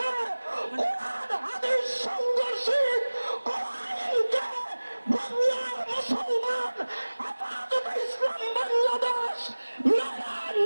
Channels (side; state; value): both; inverted; correlation -1.00